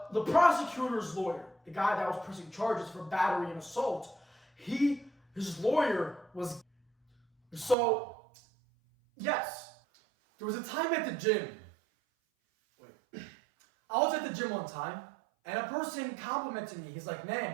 prosecutor's lawyer, the guy that was pressing charges for battery and assault, his lawyer was... So, yes. There was a time at the gym. I was at the gym one time, and a person complimented me. He's like,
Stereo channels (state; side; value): drops out; left; at 7.8 s